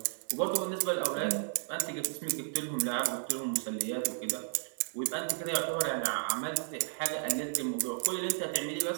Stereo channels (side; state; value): left; silent; digital silence